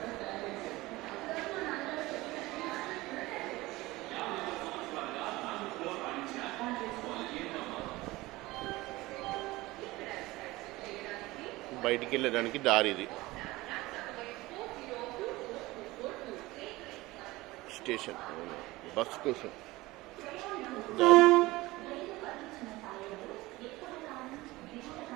బయటికి వెళ్ళడానికి దారి ఇది. స్టేషన్ బస్ కోసం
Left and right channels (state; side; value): quieter; left; 19.9 dB